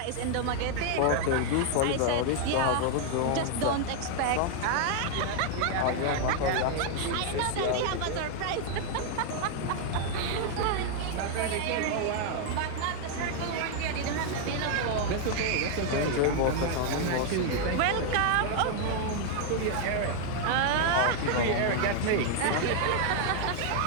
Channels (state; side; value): different; both; correlation 0.00